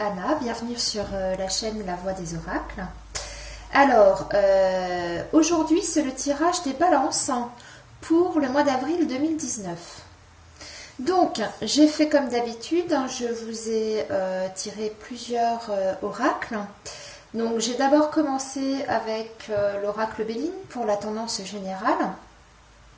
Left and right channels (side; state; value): both; identical; correlation 1.00